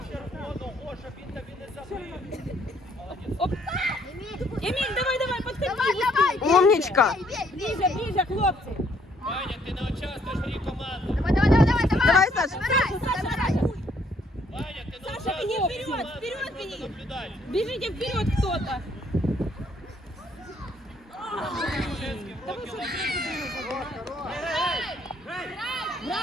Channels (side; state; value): both; normal; correlation 0.66